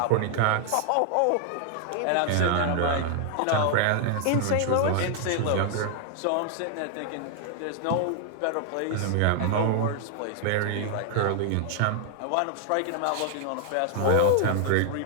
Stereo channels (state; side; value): different; both; correlation 0.00